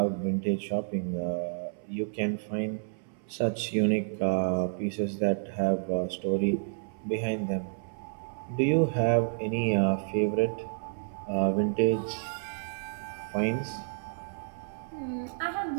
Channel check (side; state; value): left; silent; 58 dB below the other